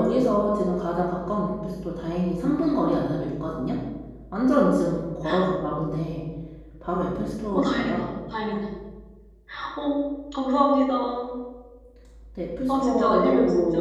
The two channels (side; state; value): both; identical; correlation 1.00